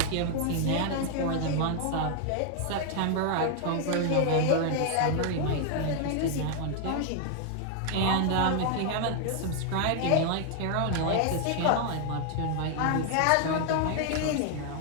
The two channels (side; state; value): both; different; correlation 0.00